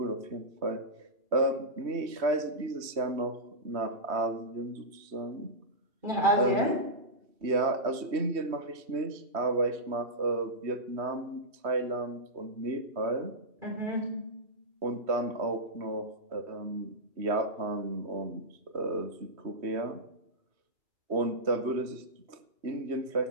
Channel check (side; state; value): left; late; 3.1 ms